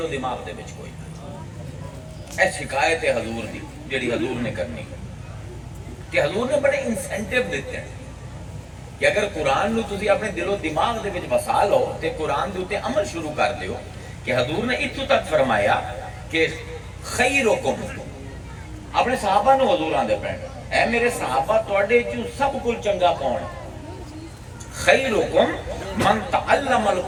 و دماغ دے وچ کوئی نہیں۔ اے شکایت ہے حضور دی جڑی حضور نے کرنی کہ حضور نے بڑے انسینٹیو دیتے ہیں کہ اگر قرآن نو تسی اپنے دل و دماغ دے وچ بسا لو تے قرآن دے اوتے عمل شروع کر دیو، کہ حضور نے اتو تک فرمایا کہ خیرکم، اپنے صحابہ نو حضور آندے پین، اے میرے صحابہ تواڈے چوں سب کل چنگا کون ہے؟ خیرکم من تعلم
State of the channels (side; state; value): both; identical; correlation 1.00